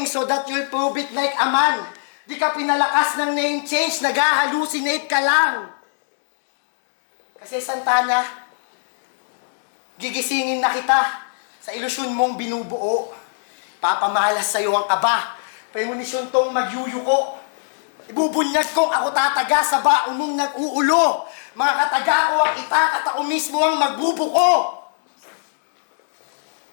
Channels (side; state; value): right; silent; digital silence